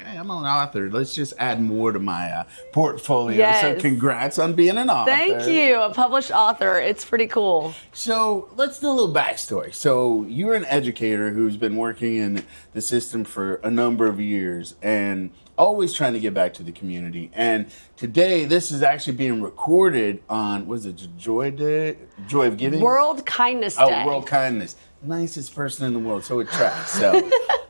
hey, I'm an author. Let's just add more to my portfolio. Yes. So congrats on being an author. Thank you. A published author. It's pretty cool. So let's do a little backstory. So you're an educator who's been working in the system for a number of years and always trying to get back to the community. And today, this is actually being recorded on, was it Joy Day? Joy of Giving? World Kindness Day. Oh, World Kindness. Nicest person in the world, so it tracks.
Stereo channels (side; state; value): both; inverted; correlation -1.00